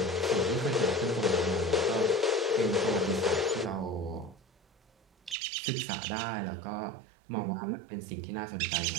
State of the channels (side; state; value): left; drops out; at 5.4 s